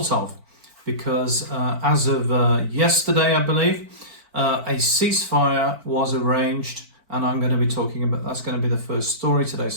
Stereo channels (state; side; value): late; left; 4.5 ms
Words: of, because as of yesterday, I believe, a ceasefire was arranged, and I'm going to be talking about, that's going to be the first story today,